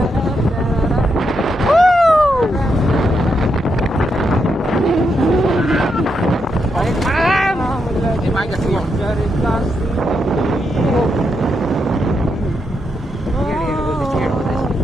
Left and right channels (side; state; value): both; normal; correlation 0.82